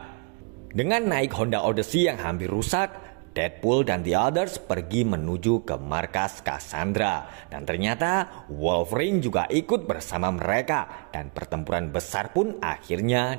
Dengan naik Honda Odyssey yang hampir rusak, Deadpool dan The Others pergi menuju ke markas Cassandra. Dan ternyata Wolverine juga ikut bersama mereka. Dan pertempuran besar pun akhirnya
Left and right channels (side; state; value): left; quieter; 34.0 dB